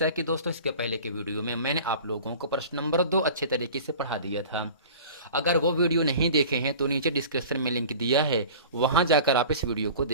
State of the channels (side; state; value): both; inverted; correlation -0.40